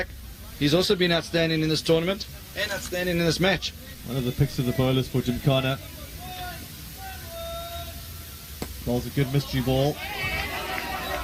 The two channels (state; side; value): identical; both; correlation 1.00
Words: He's also been outstanding in this tournament and outstanding in this match. One of the picks of the bowlers for Gymkhana. Bowls a good mystery ball.